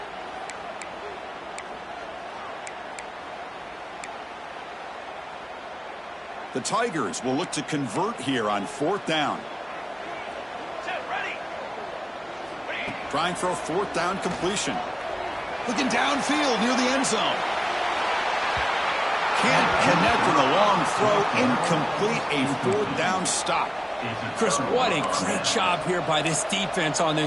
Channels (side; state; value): both; identical; correlation 1.00